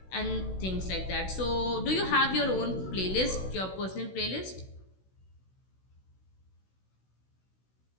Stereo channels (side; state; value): right; late; 16 ms